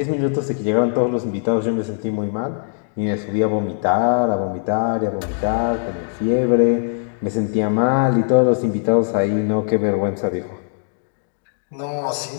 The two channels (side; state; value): right; silent; digital silence